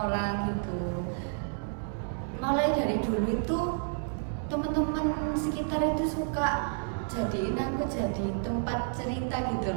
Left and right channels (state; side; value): silent; left; digital silence